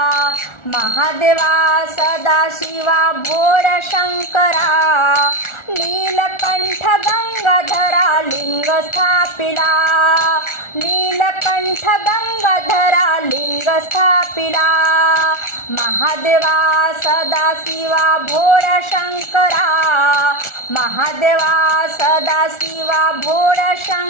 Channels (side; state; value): right; late; 1.4 ms